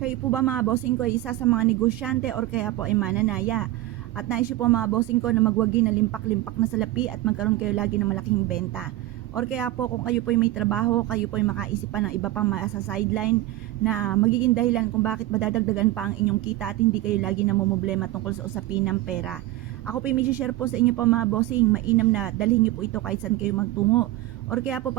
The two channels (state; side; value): quieter; left; 16.0 dB